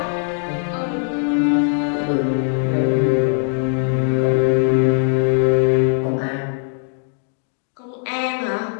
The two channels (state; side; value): silent; right; 59 dB below the other